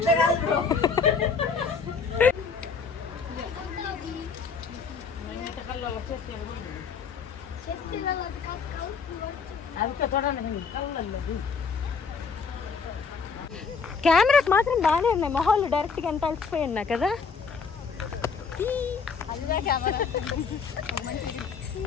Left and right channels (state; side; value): quieter; right; 5.4 dB